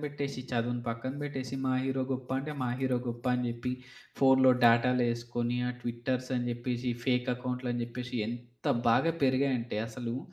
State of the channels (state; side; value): identical; both; correlation 1.00